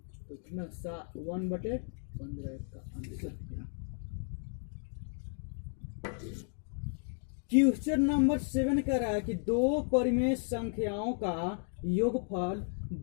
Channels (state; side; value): silent; right; 55 dB below the other